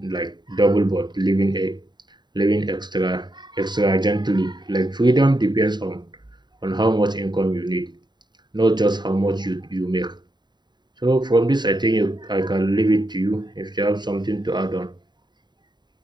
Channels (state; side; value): late; left; 0.21 ms